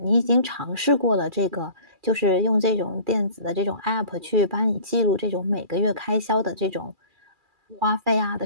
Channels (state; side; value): late; left; 2.4 ms